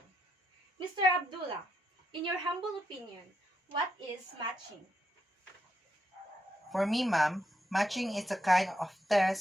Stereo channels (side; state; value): both; normal; correlation 0.81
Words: Mr. Abdullah, in your humble opinion, what is matching? For me, ma'am, matching is a kind of